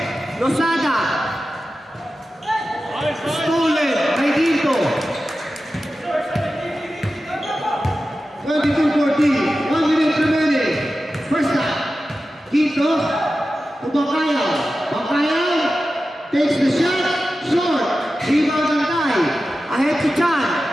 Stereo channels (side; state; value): both; normal; correlation 0.93